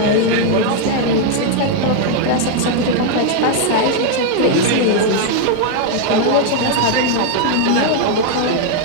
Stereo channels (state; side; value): different; both; correlation 0.00